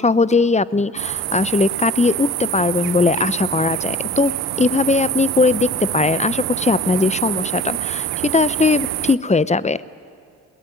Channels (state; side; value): normal; both; correlation 0.45